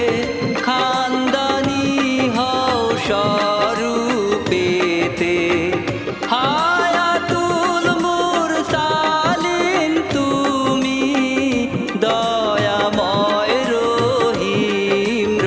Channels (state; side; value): identical; both; correlation 1.00